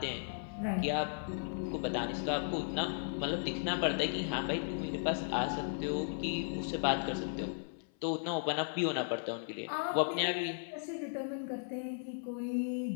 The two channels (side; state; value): right; silent; 54 dB below the other